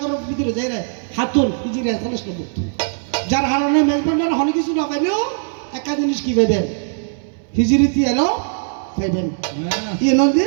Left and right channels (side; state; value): left; silent; digital silence